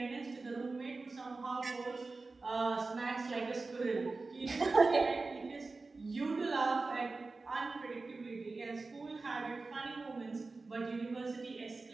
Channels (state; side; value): quieter; left; 3.7 dB